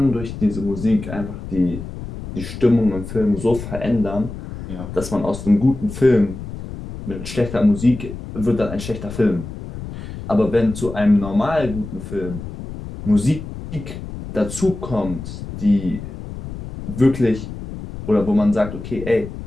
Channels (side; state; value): left; noise; rumble, 10 dB below the sound